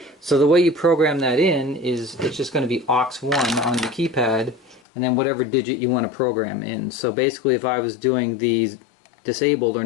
So the way you program that in is it's just going to be aux1 on the keypad, and then whatever digit you want to program in. So basically if I was doing these disabled or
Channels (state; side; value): drops out; right; at 4.8 s